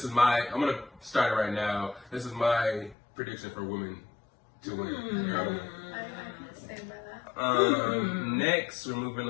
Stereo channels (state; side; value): drops out; right; at 3.0 s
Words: going to start it right now. This is my prediction for women to win. I can stand by that. Next, we're